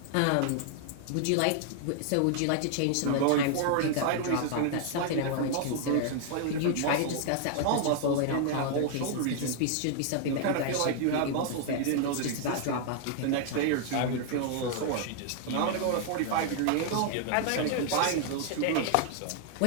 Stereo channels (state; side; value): different; both; correlation 0.00